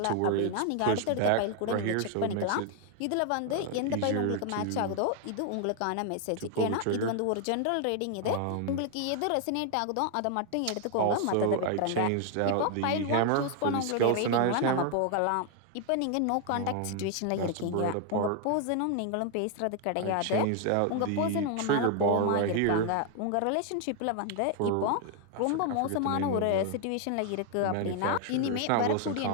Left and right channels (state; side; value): different; both; correlation 0.00